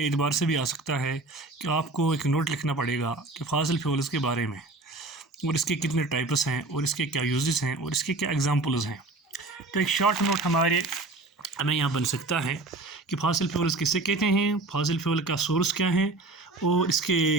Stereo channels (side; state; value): left; quieter; 3.2 dB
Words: एतबार से भी आ सकता है कि आपको एक नोट लिखना पड़ेगा कि फासिल फ्यूल्स के बारे में, और इसके कितने टाइप्स हैं और इसके क्या यूजेस हैं और इसके क्या एग्जांपल्स हैं। तो एक शॉर्ट नोट हमें यहाँ बन सकता है कि फासिल फ्यूल्स किसे कहते हैं, फासिल फ्यूल का सोर्स क्या है और